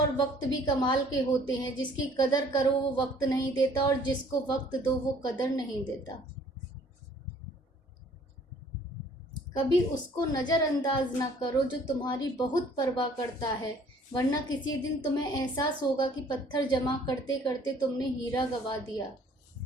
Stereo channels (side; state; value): both; normal; correlation 0.56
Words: वक्त भी कमाल के होते हैं। जिसकी कदर करो वो वक्त नहीं देता, और जिसको वक्त दो वो कदर नहीं देता। कभी उसको नज़रअंदाज ना करो जो तुम्हारी बहुत परवाह करता है, वरना किसी दिन तुम्हें एहसास होगा कि पत्थर जमा करते करते तुमने हीरा गंवा दिया।